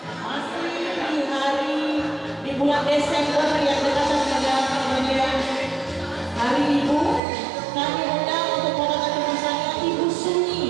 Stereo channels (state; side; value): drops out; left; at 7.2 s